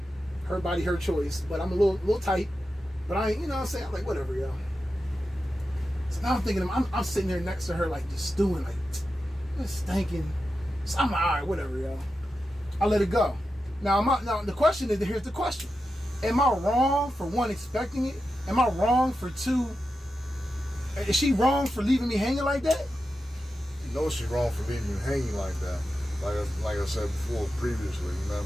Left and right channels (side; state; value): both; normal; correlation 0.90